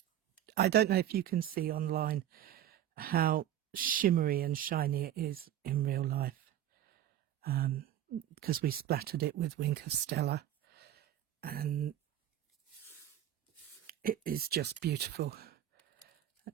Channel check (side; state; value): left; quieter; 11.5 dB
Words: I don't know if you can see online how shimmery and shiny it is in real life, because we splattered it with Wink of Stella, and it is just beautiful.